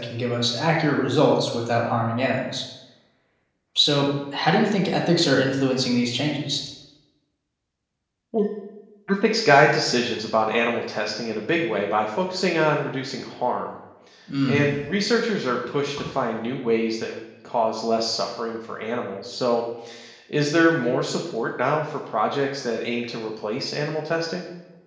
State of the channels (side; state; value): both; identical; correlation 1.00